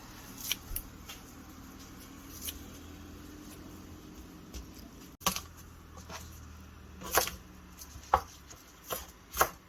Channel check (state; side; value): identical; both; correlation 1.00